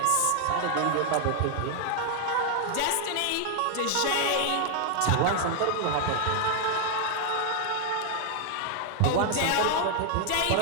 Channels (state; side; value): different; both; correlation 0.00